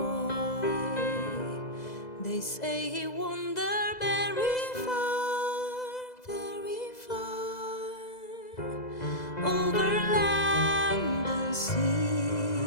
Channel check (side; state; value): right; late; 2.0 ms